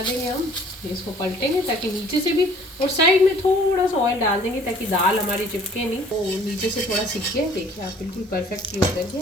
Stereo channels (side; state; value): both; normal; correlation 0.53